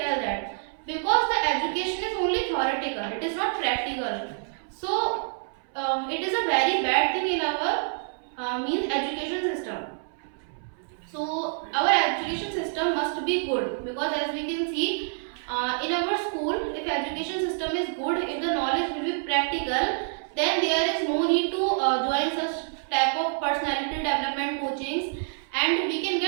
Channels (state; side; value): silent; left; 60 dB below the other